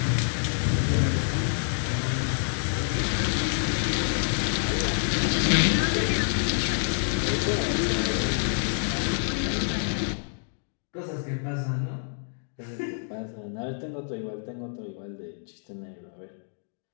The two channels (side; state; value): right; silent; digital silence